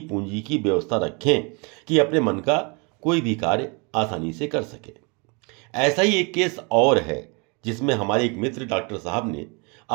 पूंजी की व्यवस्था रखें कि अपने मन का कोई भी कार्य आसानी से कर सके। ऐसा ही एक केस और है, जिसमें हमारे एक मित्र डॉक्टर साहब ने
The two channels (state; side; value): quieter; left; 31.7 dB